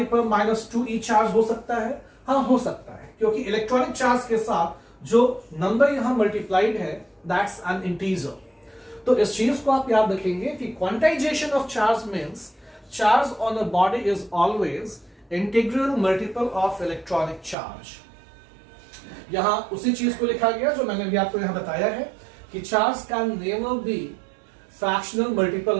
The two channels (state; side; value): drops out; left; at 17.6 s